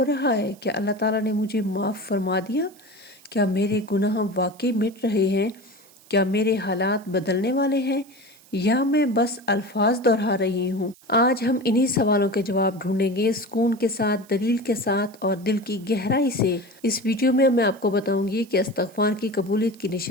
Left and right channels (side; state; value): right; noise; hiss, 26 dB below the sound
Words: رہا ہے؟ کیا اللہ تعالیٰ نے مجھے معاف فرما دیا؟ کیا میرے گناہ واقعی مٹ رہے ہیں؟ کیا میرے حالات بدلنے والے ہیں یا میں بس الفاظ دہرا رہی ہوں؟ آج ہم انہی سوالوں کے جواب ڈھونڈیں گے، سکون کے ساتھ، دلیل کے ساتھ اور دل کی گہرائی سے۔ اس ویڈیو میں آپ کو بتاؤں گی کہ استغفار کی قبولیت کی